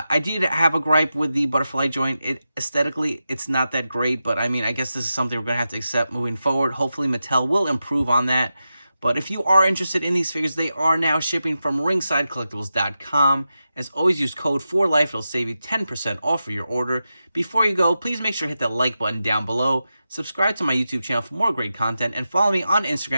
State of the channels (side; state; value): both; inverted; correlation -0.91